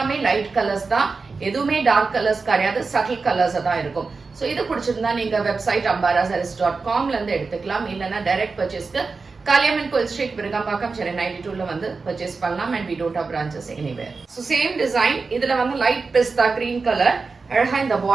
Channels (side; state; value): left; quieter; 4.4 dB